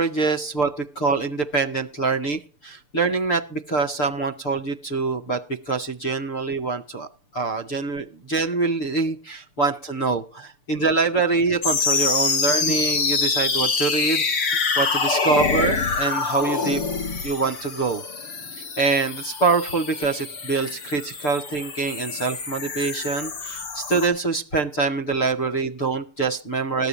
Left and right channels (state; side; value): late; right; 6.8 ms